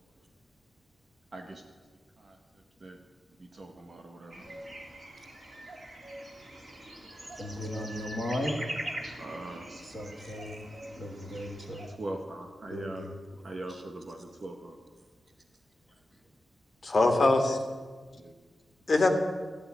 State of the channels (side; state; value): both; normal; correlation 0.91